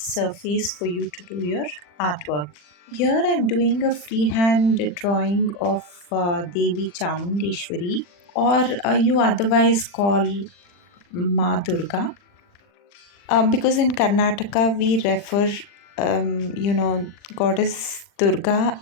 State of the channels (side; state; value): right; late; 40 ms